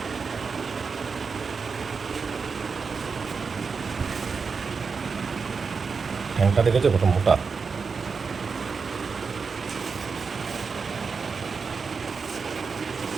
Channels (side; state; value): left; quieter; 5.2 dB